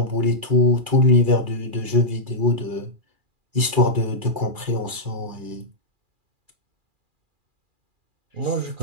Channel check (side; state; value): left; late; 2.4 ms